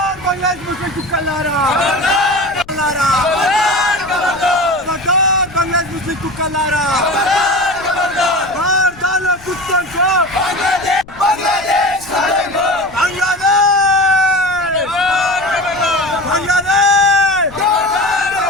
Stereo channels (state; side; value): noise; left; rumble, 22 dB below the sound